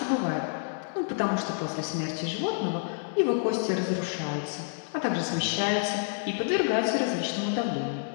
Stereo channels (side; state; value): right; silent; 59 dB below the other